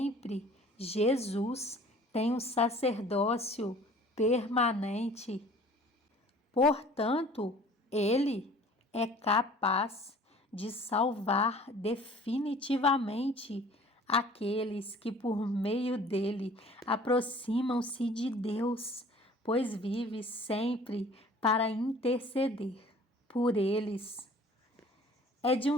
Jesus tem um sacerdócio permanente. Portanto, ele é capaz de salvar definitivamente aqueles que por meio dele aproximam-se de Deus, pois vive sempre para interceder por eles. É de um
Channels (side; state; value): both; normal; correlation 0.50